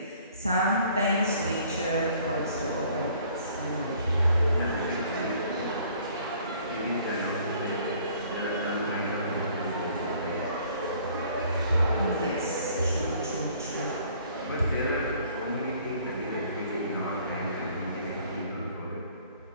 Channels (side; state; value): both; inverted; correlation -0.57